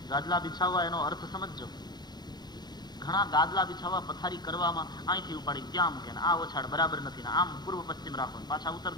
ગાદલા બિછાવવા એનો અર્થ સમજજો. ઘણા ગાદલા બિછાવવા પથારી કરવામાં અહીંથી ઉપાડી ત્યાં મૂકે, આ ઓછાડ બરાબર નથી, ને આમ પૂર્વ પશ્ચિમ રાખો, પાછા ઉત્તર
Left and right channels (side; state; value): right; late; 0.20 ms